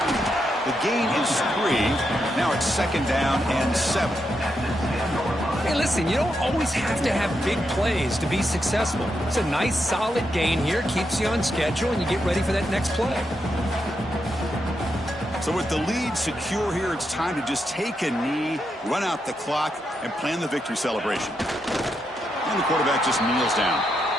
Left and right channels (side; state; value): both; normal; correlation 0.83